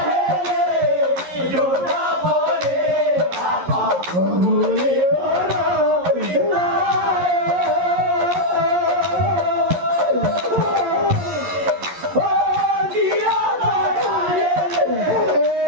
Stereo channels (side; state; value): left; late; 11 ms